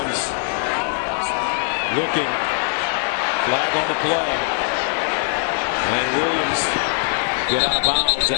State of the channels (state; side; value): silent; right; 65 dB below the other